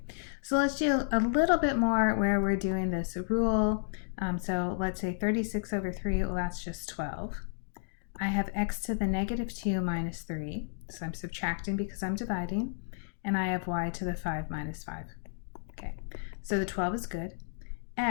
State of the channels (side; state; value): right; silent; digital silence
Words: so let's do a little bit more where we're doing this rule. So let's say 36 over 3, well, that's just 12. I have x to the negative 2 minus 3, so I'm subtracting because I'm dividing, and I have y to the 5 minus 5. Okay, so the 12 is good.